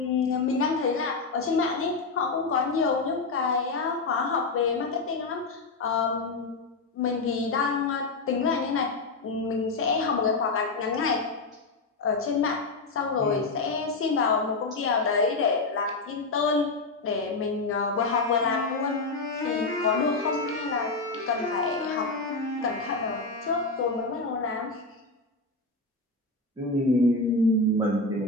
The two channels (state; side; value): quieter; right; 3.6 dB